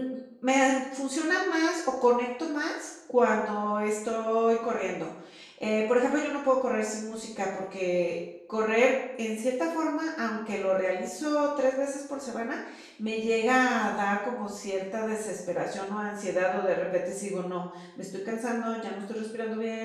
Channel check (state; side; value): identical; both; correlation 1.00